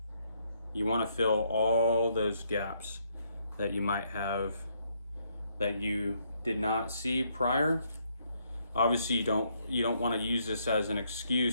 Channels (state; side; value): inverted; both; correlation -0.73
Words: fill all those gaps that you might have that you did not see prior. Obviously you don't want to use this as an